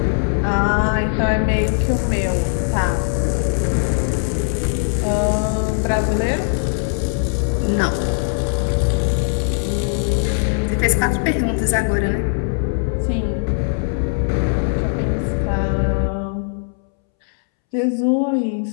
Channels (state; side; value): silent; right; 66 dB below the other